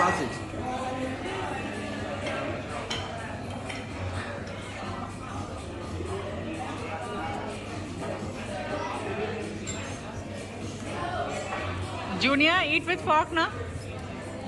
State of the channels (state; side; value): identical; both; correlation 1.00